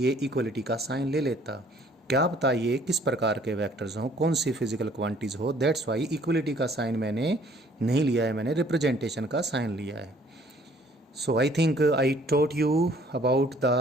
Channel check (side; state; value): both; normal; correlation 0.59